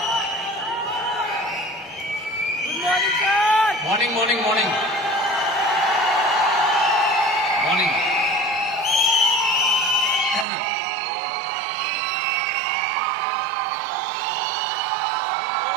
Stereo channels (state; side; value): drops out; left; at 10.5 s